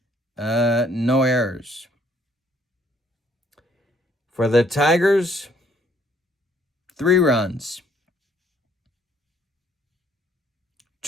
no errors. For the Tigers, 3 runs,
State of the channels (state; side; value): normal; both; correlation 0.64